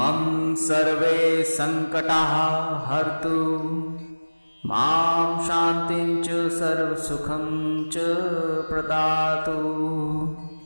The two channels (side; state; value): both; inverted; correlation -1.00